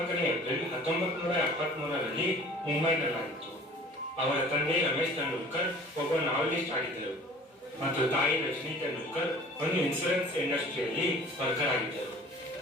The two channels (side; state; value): both; normal; correlation 0.47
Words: ಏಪ್ರಿಲ್ 1973ರಲ್ಲಿ ಮುಂಬೈನಲ್ಲಾಗಿತ್ತು. ಅವರ ತಂದೆ ರಮೇಶ್ ತೆಂಡೂಲ್ಕರ್ ಒಬ್ಬ ನಾವೆಲಿಸ್ಟ್ ಆಗಿದ್ದರು ಮತ್ತು ತಾಯಿ ರಜನಿ ತೆಂಡೂಲ್ಕರ್ ಒಂದು ಇನ್ಶೂರೆನ್ಸ್ ಇಂಡಸ್ಟ್ರಿಯಲ್ಲಿ ವರ್ಕರ್ ಆಗಿದ್ದರು.